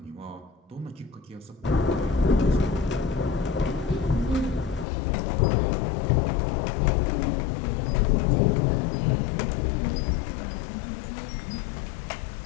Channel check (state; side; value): drops out; right; at 4.9 s